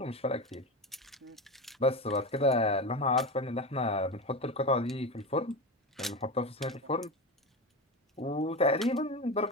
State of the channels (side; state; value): both; normal; correlation 0.22